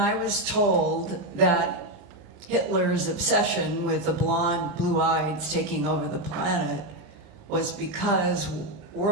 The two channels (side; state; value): left; late; 39 ms